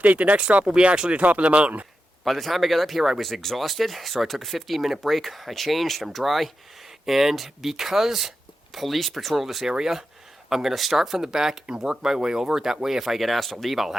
The next stop will be actually the top of the mountain. By the time I got up here, I was exhausted, so I took a 15-minute break. I changed, I'm dry, and because police patrol this area, I'm going to start from the back and work my way over. That way, if I get asked to leave, I'll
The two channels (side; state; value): both; normal; correlation 0.89